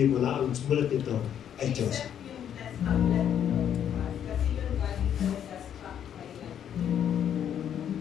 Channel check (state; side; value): quieter; right; 9.4 dB